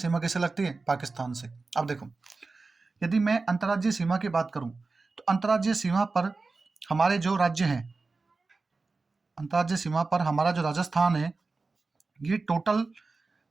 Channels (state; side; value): quieter; left; 3.9 dB